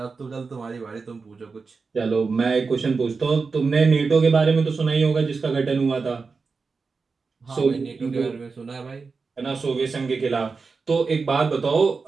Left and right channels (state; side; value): quieter; left; 4.6 dB